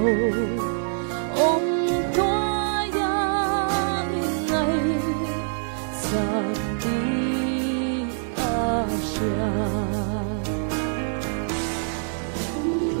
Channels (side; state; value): left; silent; digital silence